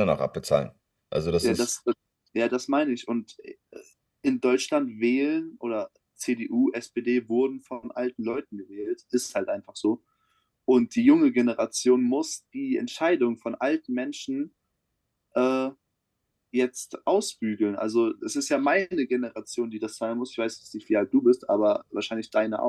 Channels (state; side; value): identical; both; correlation 1.00